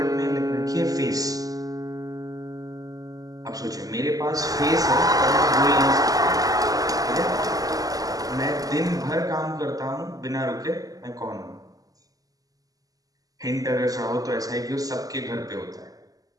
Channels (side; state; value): left; late; 0.17 ms